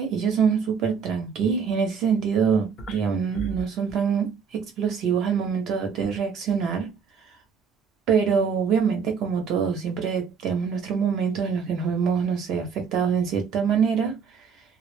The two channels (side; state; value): left; quieter; 6.3 dB